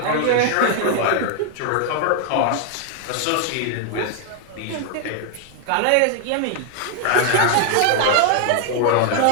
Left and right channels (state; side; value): different; both; correlation 0.00